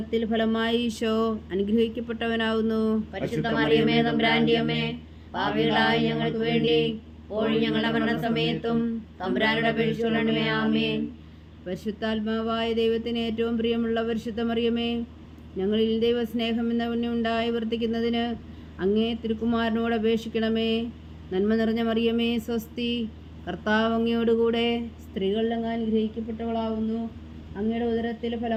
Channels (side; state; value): both; identical; correlation 1.00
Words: ഫലമായി ഈശോ അനുഗ്രഹിക്കപ്പെട്ടവനാവുന്നു. പരിശുദ്ധ മറിയമേ, തമ്പുരാന്റെ അമ്മേ, പാപികളായ ഞങ്ങൾക്ക് വേണ്ടി എപ്പോഴും ഞങ്ങളുടെ മരണസമയത്തും തമ്പുരാനോട് അപേക്ഷിച്ചുകൊള്ളണമേ. ആമേൻ. പരിശുദ്ധാത്മാവായ ദൈവത്തിന് ഏറ്റവും പ്രിയമുള്ള പരിശുദ്ധ മറിയമേ, ഞങ്ങളിൽ ദൈവസ്നേഹം എന്ന പുണ്യമുണ്ടായി വർദ്ധിക്കുന്നതിന് അങ്ങേ തിരുക്കുമാരനോട് അപേക്ഷിക്കണമേ. നന്മ നിറഞ്ഞ മറിയമേ, സ്വസ്തി. കർത്താവ് അങ്ങയോടുകൂടെ സ്ത്രീകളിൽ അങ്ങ് അനുഗ്രഹിക്കപ്പെട്ടവളാവുന്നു. അങ്ങയുടെ ഉദരത്തിൽ